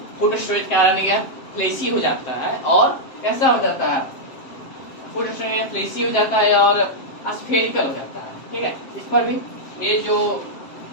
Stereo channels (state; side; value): late; right; 7.7 ms